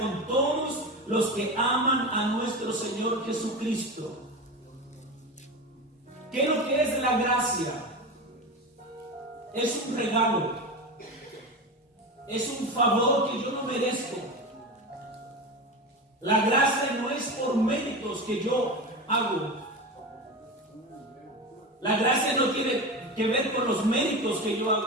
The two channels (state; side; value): normal; both; correlation 0.24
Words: todos los que aman a nuestro Señor Jesucristo. ¿Qué es lo que es la gracia? Es un regalo, es un favor que yo no merezco. La gracia no es por méritos que yo hago. La gracia no tiene que ver con los méritos que yo